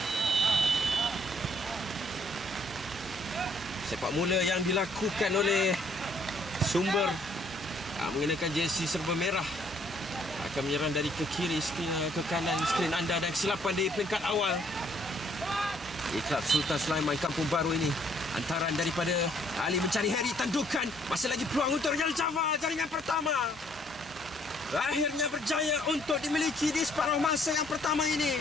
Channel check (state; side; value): normal; both; correlation 0.65